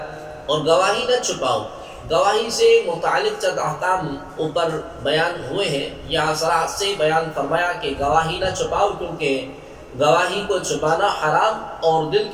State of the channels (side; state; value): both; identical; correlation 1.00